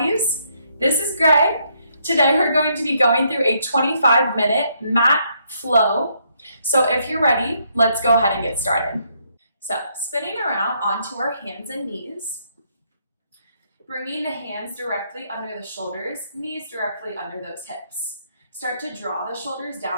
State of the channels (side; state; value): both; inverted; correlation -0.73